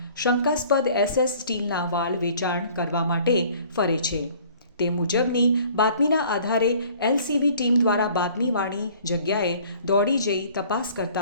શંકાસ્પદ SS સ્ટીલના વાલ વેચાણ કરવા માટે ફરે છે. તે મુજબની બાતમીના આધારે એલસીબી ટીમ દ્વારા બાતમીવાળી જગ્યાએ દોડી જઈ તપાસ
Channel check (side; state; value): both; inverted; correlation -0.53